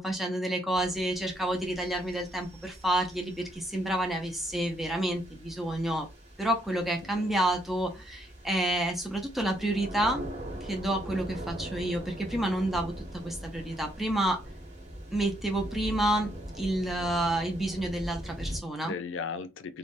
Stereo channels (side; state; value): both; normal; correlation 0.73